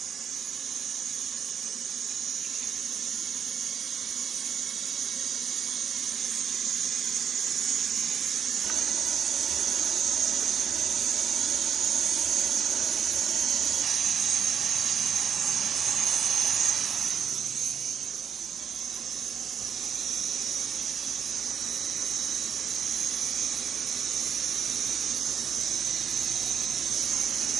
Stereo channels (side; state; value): left; quieter; 7.6 dB